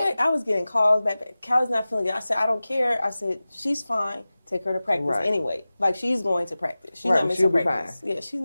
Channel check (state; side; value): inverted; both; correlation -0.97